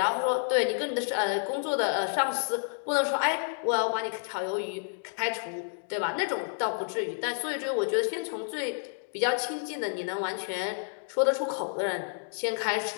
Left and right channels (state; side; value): silent; right; digital silence